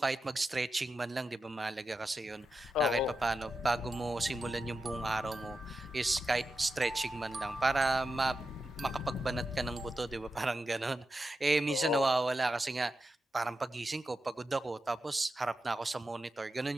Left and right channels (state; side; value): normal; both; correlation 0.89